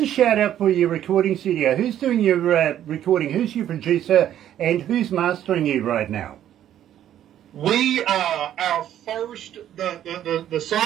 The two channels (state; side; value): quieter; left; 11.2 dB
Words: shout out for your recording studio. Who's doing your recording? Who's your producer? And who's mastering you right now? We our first the